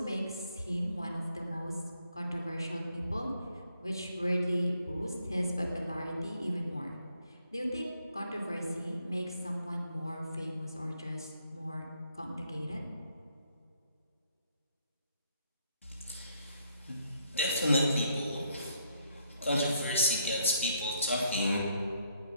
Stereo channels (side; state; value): both; inverted; correlation -0.70